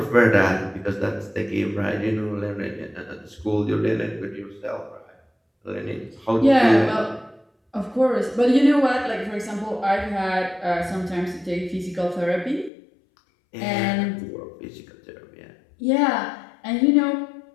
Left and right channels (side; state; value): right; drops out; at 12.7 s